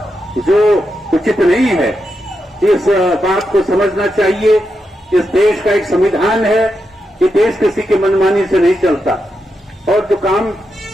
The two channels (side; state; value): both; normal; correlation 0.86